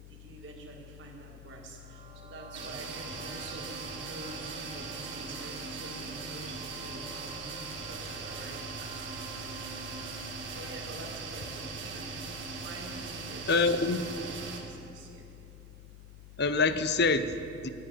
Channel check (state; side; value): noise; left; hum, 15 dB below the sound